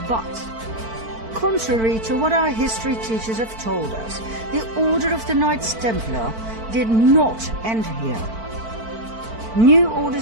But, contrary to what our history teachers have told us, the Order of the Knights Templar did not end here. New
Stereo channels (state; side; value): late; left; 4.5 ms